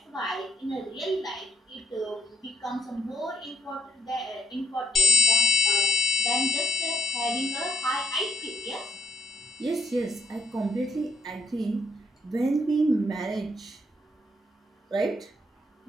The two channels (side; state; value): both; normal; correlation 0.72